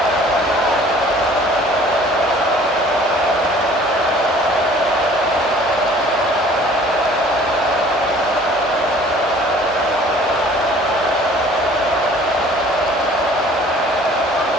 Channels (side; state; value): both; normal; correlation 0.52